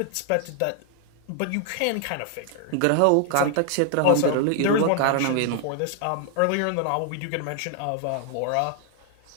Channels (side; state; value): both; different; correlation 0.00